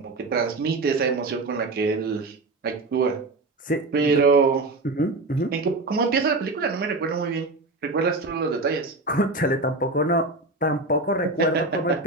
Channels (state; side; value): quieter; left; 3.1 dB